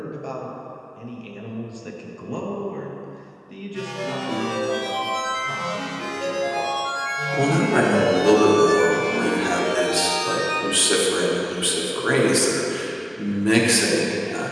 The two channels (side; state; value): both; identical; correlation 1.00